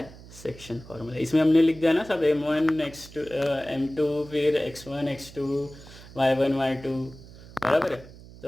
section formula. इसमें हमने लिख दिया ना सब, M1 X2 M2, फिर X1 X2, Y1 Y2, बराबर है।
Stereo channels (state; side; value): noise; right; hum, 19 dB below the sound